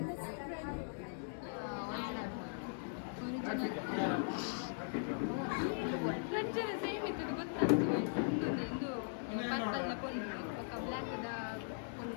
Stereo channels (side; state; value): right; silent; digital silence